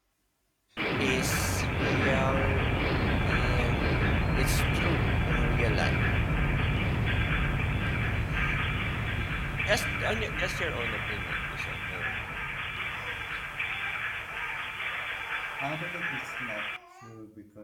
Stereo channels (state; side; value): identical; both; correlation 1.00